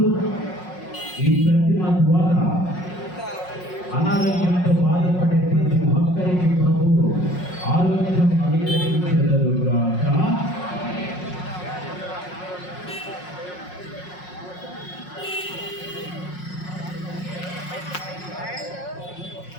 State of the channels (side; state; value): right; late; 5.5 ms